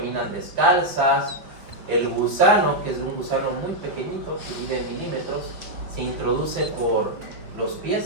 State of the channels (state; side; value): late; left; 5.7 ms